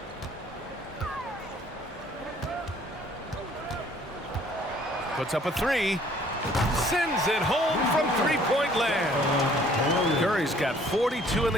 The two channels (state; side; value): normal; both; correlation 0.58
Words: Puts up a three. Sends it home from three-point land. Curry's got 42 in